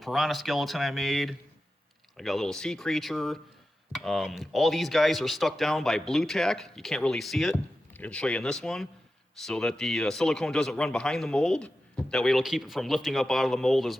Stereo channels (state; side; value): normal; both; correlation 0.92